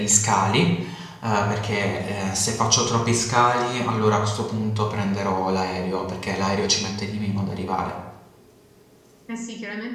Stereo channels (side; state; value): both; identical; correlation 1.00